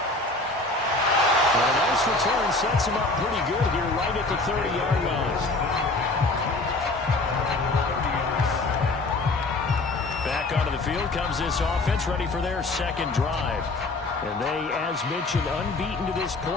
And a nice return sets him up pretty good here right at the 30-yard line. Back onto the field comes this offense, ready for their second drive. And they, as mentioned, unbeaten to this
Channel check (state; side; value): quieter; right; 3.1 dB